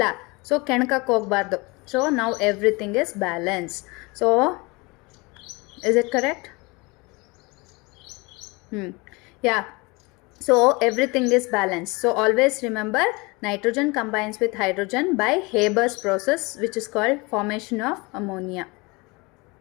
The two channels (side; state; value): right; quieter; 26.1 dB